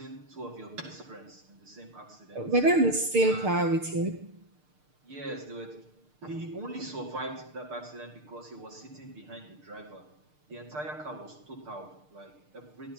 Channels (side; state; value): left; late; 6.6 ms